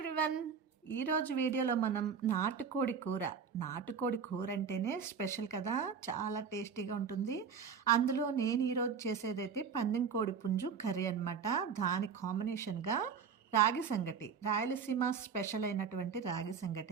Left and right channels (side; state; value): left; quieter; 6.4 dB